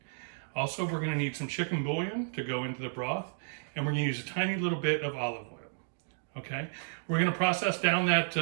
Also, we're going to need some chicken bouillon to go into the broth, and we're going to use a tiny little bit of olive oil. Okay, we're going to process down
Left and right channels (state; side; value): silent; left; digital silence